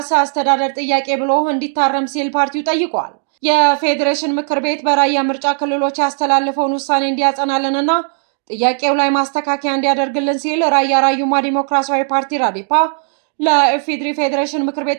አስተዳደር ጥያቄ ብሎ እንዲታረም ሲል ፓርቲው ጠይቋል። የፌዴሬሽን ምክር ቤት በራያ ምርጫ ክልሎች ያስተላለፈውን ውሳኔ እንዲያጸናልንና ጥያቄው ላይ ማስተካከያ እንዲያደርግልን ሲል ራያ ራዩማ ዲሞክራሲያዊ ፓርቲ ራዴፓ ለኢፌዴሪ ፌዴሬሽን ምክር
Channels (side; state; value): left; silent; digital silence